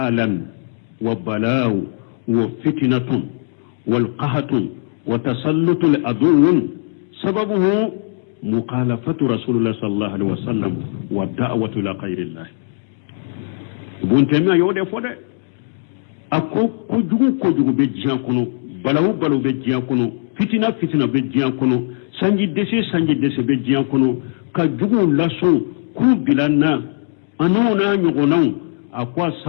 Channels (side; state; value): right; silent; digital silence